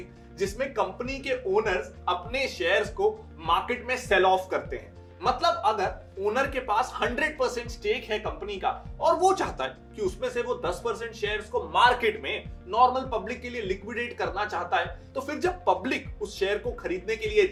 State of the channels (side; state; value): both; identical; correlation 1.00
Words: जिसमें कंपनी के ओनर्स अपने शेयर्स को मार्केट में सेल ऑफ करते हैं। मतलब अगर ओनर के पास 100% स्टेक है कंपनी का और वो चाहता है कि उसमें से वो 10% शेयर्स को मार्केट में नॉर्मल पब्लिक के लिए लिक्विडेट करना चाहता है, तो फिर जब पब्लिक उस शेयर को खरीदने के लिए